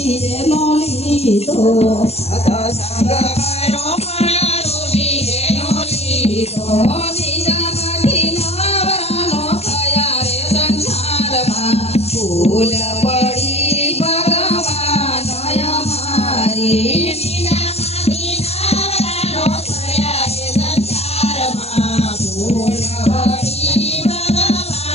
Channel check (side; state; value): right; late; 0.30 ms